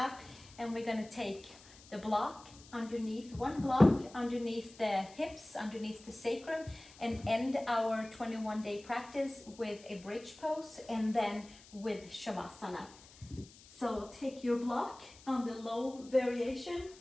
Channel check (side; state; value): left; noise; hiss, 21 dB below the sound